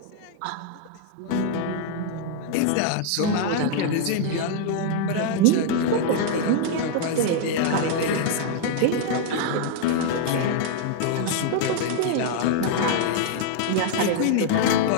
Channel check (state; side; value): different; both; correlation 0.00